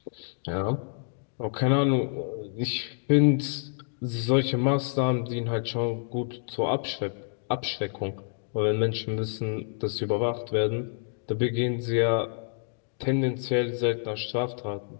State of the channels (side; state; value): right; silent; digital silence